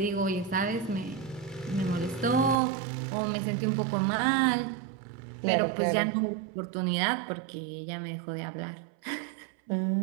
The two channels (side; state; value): left; drops out; at 2.6 s